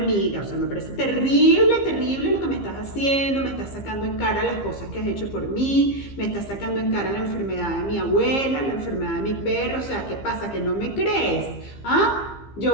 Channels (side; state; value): right; late; 15 ms